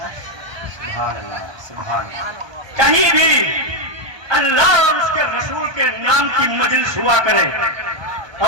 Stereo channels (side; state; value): left; late; 1.2 ms